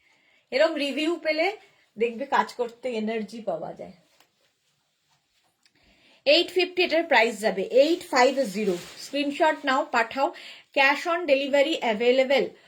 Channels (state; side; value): identical; both; correlation 1.00